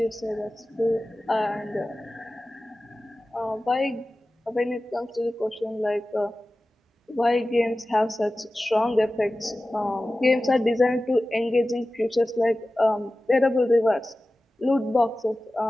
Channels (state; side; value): normal; both; correlation 0.96